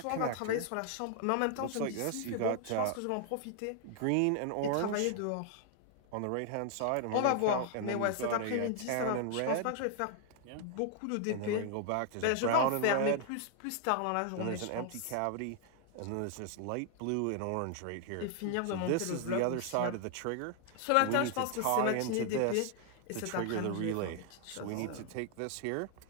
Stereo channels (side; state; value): both; different; correlation 0.00